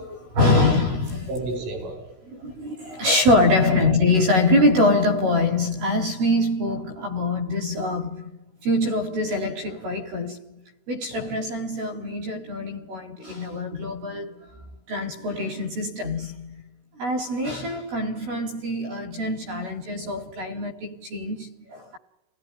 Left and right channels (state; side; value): late; left; 16 ms